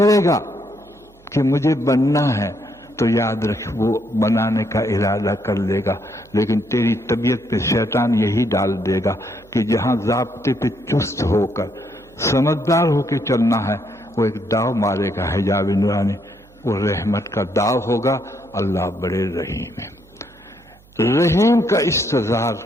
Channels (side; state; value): right; noise; hum, 28 dB below the sound